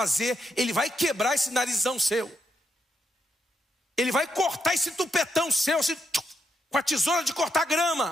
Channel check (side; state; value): both; normal; correlation 0.79